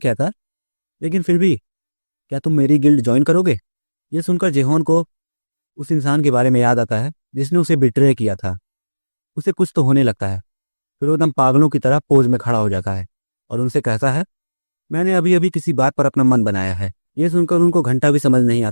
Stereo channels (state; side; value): inverted; both; correlation -1.00